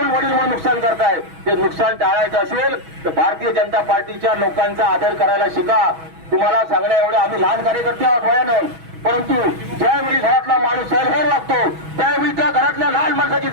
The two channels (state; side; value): late; left; 6.2 ms